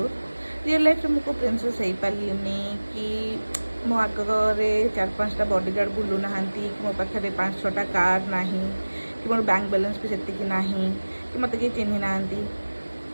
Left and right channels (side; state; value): both; inverted; correlation -1.00